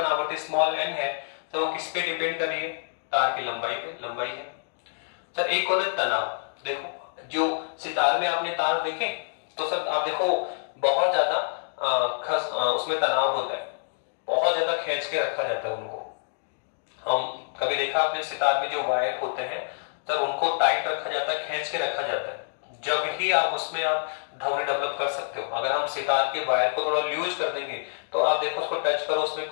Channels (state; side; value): silent; right; digital silence